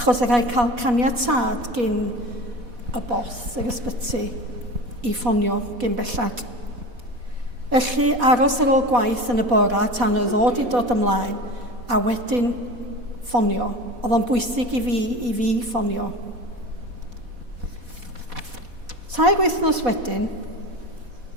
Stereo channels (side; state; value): left; late; 4.1 ms